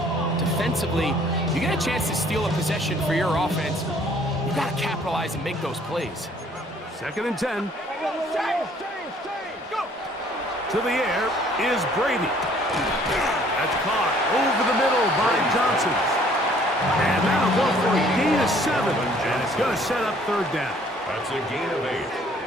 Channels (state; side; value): normal; both; correlation 0.59